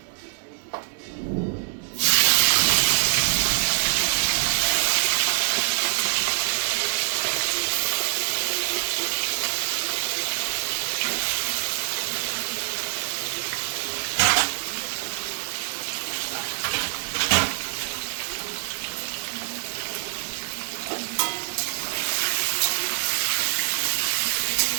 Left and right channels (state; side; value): silent; left; digital silence